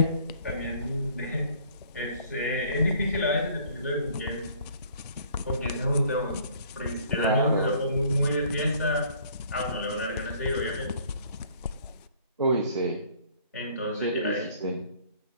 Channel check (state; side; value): inverted; both; correlation -0.57